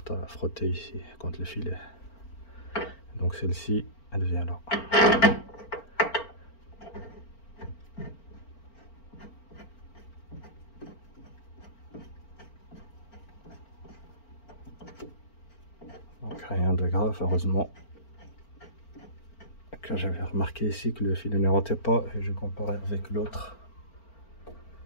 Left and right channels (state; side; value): late; right; 4.4 ms